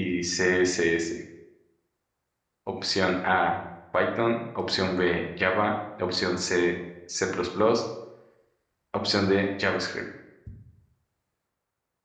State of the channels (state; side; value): identical; both; correlation 1.00